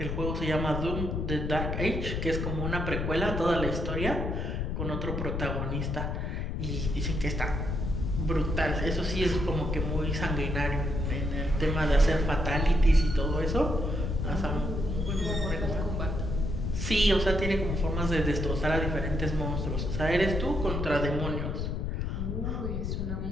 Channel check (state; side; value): noise; left; rumble, 2 dB below the sound